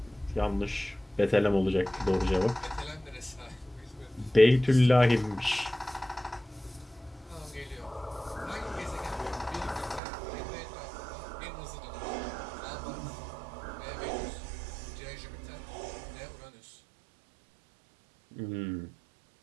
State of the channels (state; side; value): drops out; left; at 10.0 s